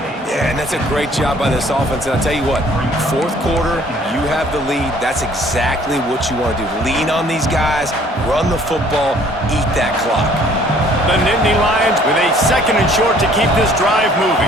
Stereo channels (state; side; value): normal; both; correlation 0.57